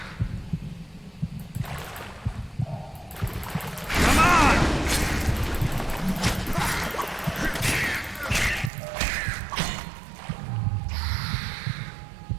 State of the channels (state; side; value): drops out; left; at 8.7 s